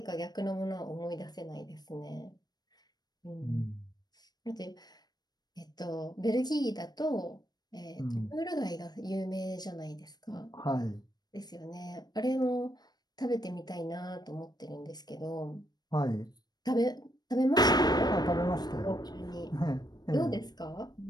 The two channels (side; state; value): right; late; 0.19 ms